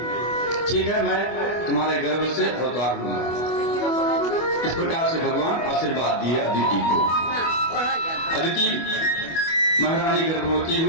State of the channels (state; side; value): late; right; 25 ms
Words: ठीक है, मैं तुम्हारे गर्भ से अवतार लूंगा। इस प्रकार से भगवान आशीर्वाद दिए अदिति को। अदिति महारानी गर्भवती